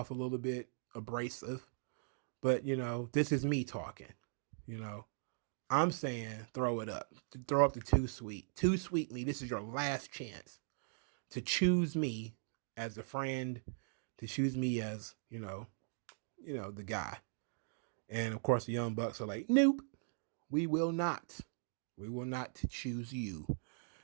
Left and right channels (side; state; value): left; silent; digital silence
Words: a little bit abrasive, but this is me talking. I'm saying throw it up. Throw up the Too Sweet. Too Sweet me. This is your last chance to choose me as a friend, to choose me as, the guy. And of course the Young Bucks are like, nope. We will not choose you,